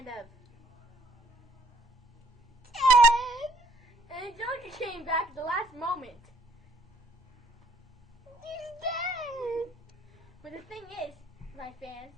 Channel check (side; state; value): both; normal; correlation 0.62